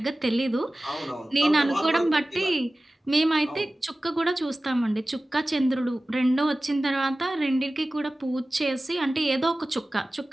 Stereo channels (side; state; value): both; normal; correlation 0.97